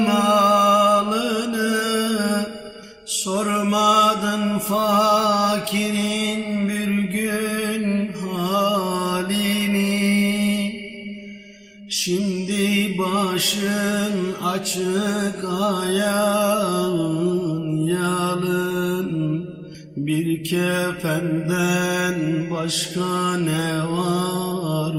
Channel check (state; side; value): identical; both; correlation 1.00